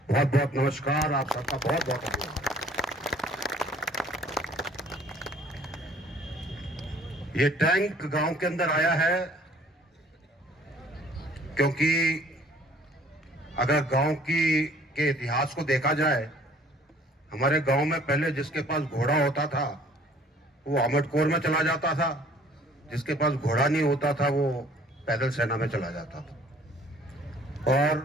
बहुत बहुत नमस्कार, आप सबका बहुत बहुत धन्यवाद। ये टैंक गांव के अंदर आया है क्योंकि अगर गांव के इतिहास को देखा जाए, हमारे गांव में पहले जिसके पास घोड़ा होता था वो आमटकोर में चला जाता था, जिसके पास घोड़ा नहीं होता था वो पैदल सेना में चला जाता था। और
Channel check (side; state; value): both; normal; correlation 0.56